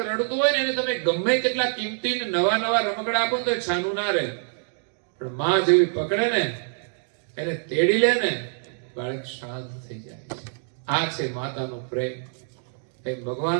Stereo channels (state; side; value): silent; left; 58 dB below the other